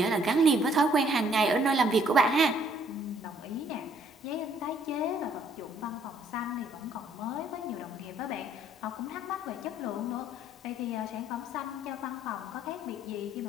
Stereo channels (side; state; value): both; normal; correlation 0.63